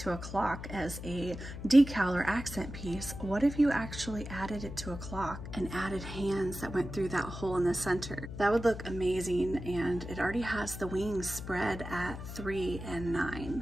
a clock as a decal or accent piece, what if you actually added it to a clock and added hands that went through that hole in the center? That would look amazing, and it already has the wings spread at 3 and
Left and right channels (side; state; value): left; noise; hum, 9 dB below the sound